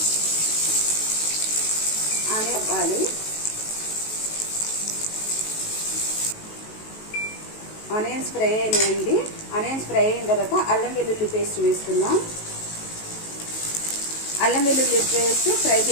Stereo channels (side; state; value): right; late; 19 ms